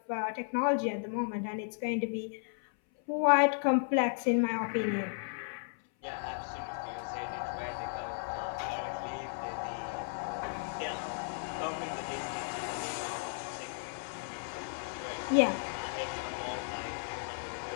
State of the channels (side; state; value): right; silent; 55 dB below the other